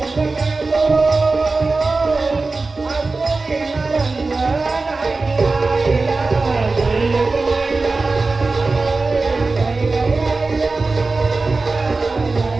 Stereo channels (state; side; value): quieter; left; 3.7 dB